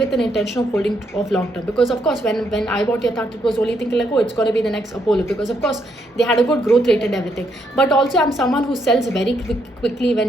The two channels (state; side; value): normal; both; correlation 0.75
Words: an intention of holding of long term, because of course when I bought Yatharth, it was only thinking like, oh, it's going to be the next Apollo, because of course they had a good growth rate and everything. But also I'm someone who sells very quickly